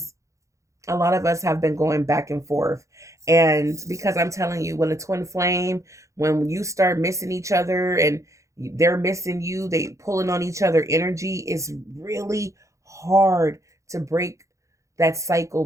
a lot of us have been going back and forth. And because I'm telling you, when a twin flame, when you start missing each other and they're missing you, they pulling on each other energy, it's really hard to break that cycle,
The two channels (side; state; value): left; late; 0.15 ms